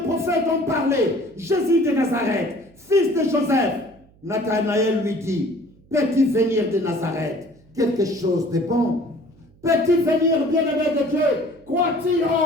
prophètes ont parlé, Jésus de Nazareth, fils de Joseph. Nathanaël lui dit, peux-tu venir de Nazareth quelque chose de bon? Peux-tu venir, bien-aimé de Dieu? Crois-tu,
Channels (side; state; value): right; noise; hum, 29 dB below the sound